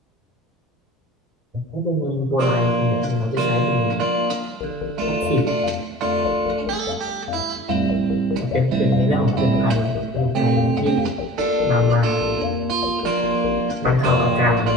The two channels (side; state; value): both; normal; correlation 0.44